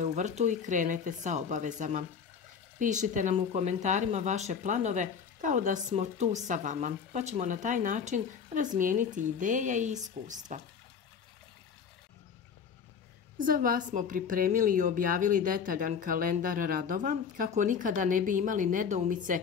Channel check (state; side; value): quieter; right; 6.6 dB